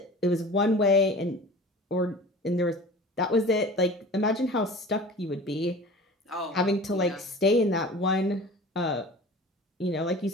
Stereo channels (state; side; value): normal; both; correlation 0.40